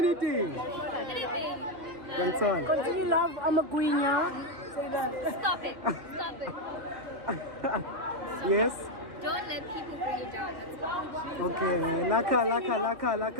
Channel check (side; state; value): left; late; 1.4 ms